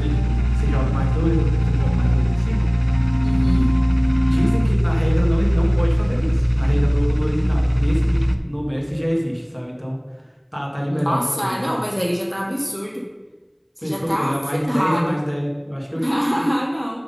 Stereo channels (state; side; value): identical; both; correlation 1.00